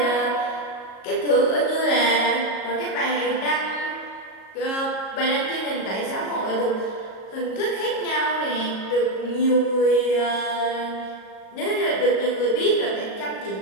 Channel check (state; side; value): late; right; 37 ms